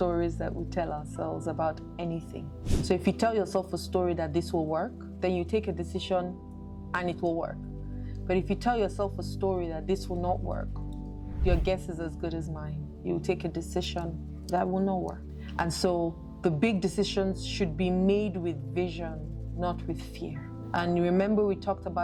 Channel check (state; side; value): identical; both; correlation 1.00